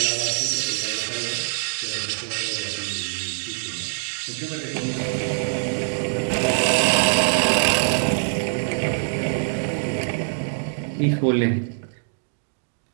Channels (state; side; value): silent; left; digital silence